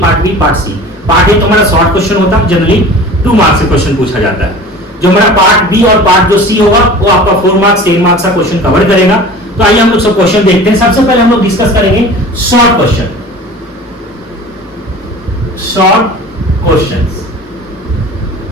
part B, part C. Part A तो हमारा शॉर्ट क्वेश्चन होता है, जनरली 2 मार्क्स से क्वेश्चन पूछा जाता है। जो हमारा पार्ट बी और पार्ट जो सी होगा वो आपका 4 मार्क्स 10 मार्क्स का क्वेश्चन कवर करेगा। तो आइए हम लोग सब क्वेश्चन देखते हैं। सबसे पहले हम लोग डिस्कस करेंगे शॉर्ट क्वेश्चन। शॉर्ट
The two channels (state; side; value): normal; both; correlation 0.40